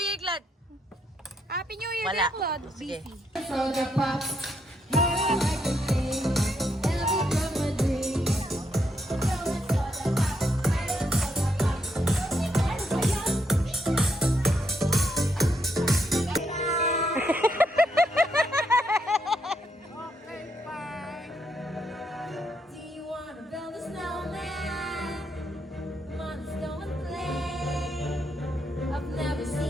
Year, Claude. Happy New Year, Wala. Claude. Sige. Busy. So the pops.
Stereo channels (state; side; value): normal; both; correlation 0.77